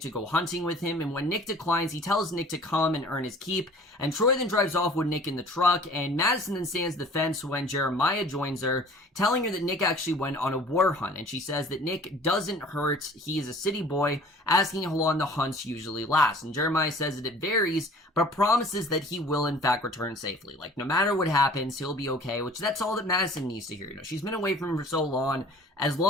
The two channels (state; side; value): normal; both; correlation 0.48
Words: go hunting with him, and when Nick declines, he tells Nick to come and earn his keep, and Troy then drives off with Nick in the truck, and Madison then stands the fence when Jeremiah joins her, telling her that Nick actually went on a war hunt, and she says that Nick doesn't hurt, he is a city boy, asking how long the hunts usually last, and Jeremiah says that it varies, but promises that he will in fact return safely. No matter what happens, he'll be okay, which that's all that Madison needs to hear. She's been away from him for so long. As